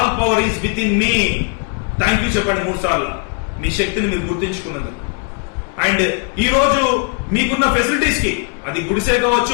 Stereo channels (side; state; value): right; quieter; 35.1 dB